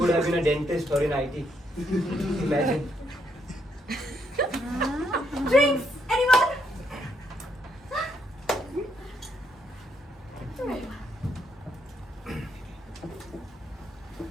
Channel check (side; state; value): both; normal; correlation 0.75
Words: have been a dentist or in IT. Imagine. Drinks! Anyone?